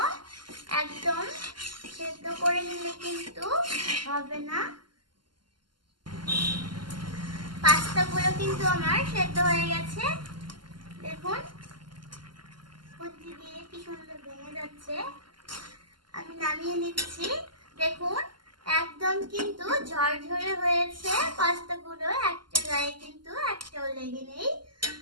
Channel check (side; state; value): left; late; 0.71 ms